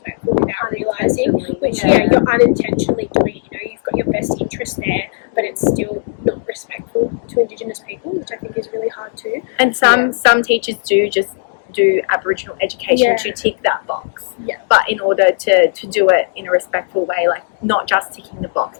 without realising, which, you're unintentionally doing it. You know, you've got your best interest there, but it's still not respectful to Indigenous people, which I think is really hard too. And some teachers do just do Aboriginal education to tick that box. Yeah. But in order to do it in a respectful way, like not just ticking the box,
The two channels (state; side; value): silent; right; digital silence